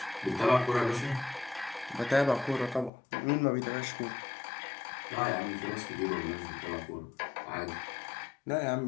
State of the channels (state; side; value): drops out; right; at 2.9 s